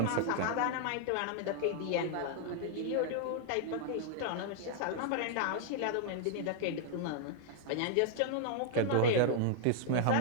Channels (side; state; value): both; different; correlation -0.01